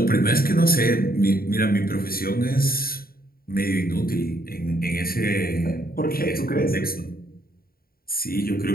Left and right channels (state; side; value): late; right; 0.43 ms